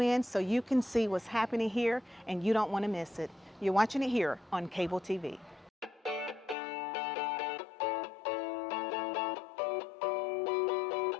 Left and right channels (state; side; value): drops out; right; at 6.6 s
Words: so you can see what's happening here, and you don't want to miss it. You're watching it here on cable TV.